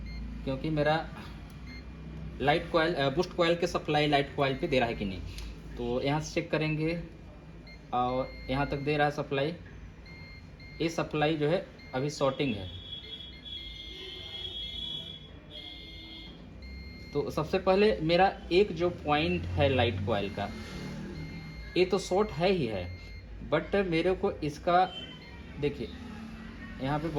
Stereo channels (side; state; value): both; identical; correlation 1.00